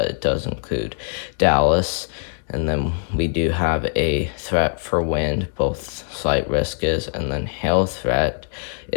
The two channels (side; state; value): right; silent; digital silence